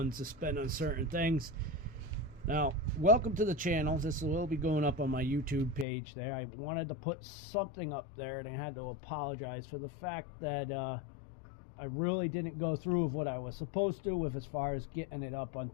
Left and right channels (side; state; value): right; drops out; at 5.9 s